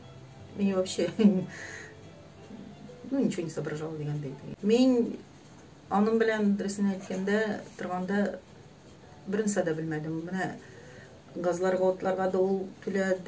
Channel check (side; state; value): both; identical; correlation 1.00